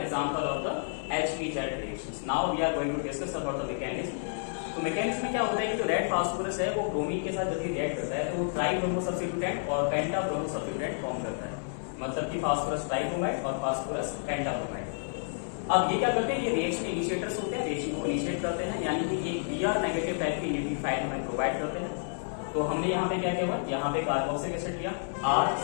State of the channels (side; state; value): right; silent; 58 dB below the other